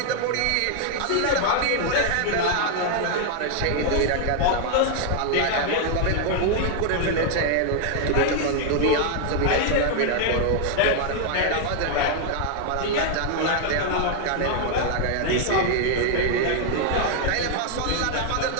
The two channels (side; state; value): both; different; correlation 0.00